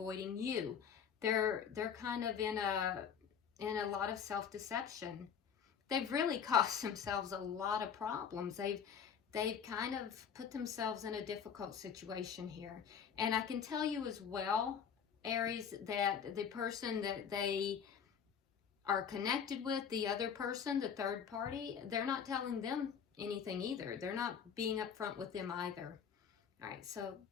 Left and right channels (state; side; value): quieter; right; 7.4 dB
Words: you. They're kind of in a lot of self-deception. They've really caused themselves a lot of problems. They've kind of put themselves in a difficult situation here. And I can tell you as well, Aries, that the person that they are connected with, the other person, the third party, they're not telling them anything either. They're not being upfront with them either. All right, so